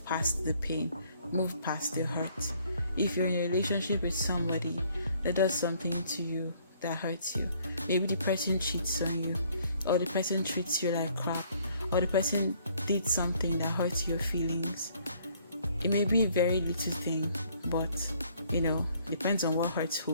past the pain, move past the hurt. If you're in a relationship with somebody that does something to you that hurts you, maybe the person cheats on you, or the person treats you like crap, or the person did something that hurts your feelings. It may be a very little thing, but depends on what hurts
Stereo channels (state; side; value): inverted; both; correlation -0.62